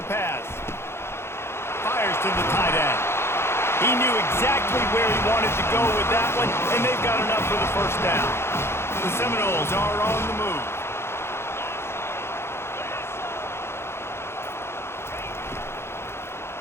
pass. Fires to the tight end. He knew exactly where he wanted to go with that one, and they've got enough for the first down. The Seminoles are on the move.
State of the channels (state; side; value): late; right; 0.12 ms